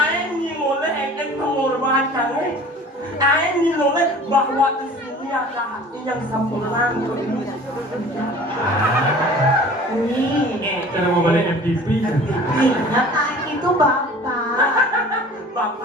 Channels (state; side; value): normal; both; correlation 0.45